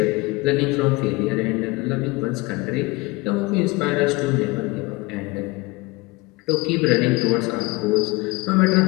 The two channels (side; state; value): right; quieter; 23.8 dB